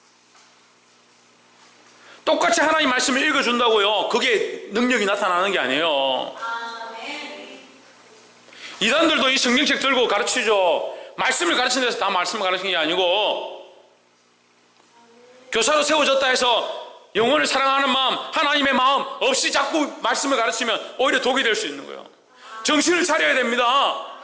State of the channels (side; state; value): both; identical; correlation 1.00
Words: 똑같이 하나님 말씀을 읽어준다고요. 그게 능력이 나타나는 게 아니에요. 이단들도 이 성경책 들고 가르치죠. 말씀을 가르치는 데서 다 말씀을 가르치는 게 아니고 교사로 세워졌다 해서 영혼을 사랑하는 마음, 하나님의 마음 없이 자꾸 말씀을 가르치면 오히려 독이 될 수 있는 거예요. 정신을 차려야 됩니다.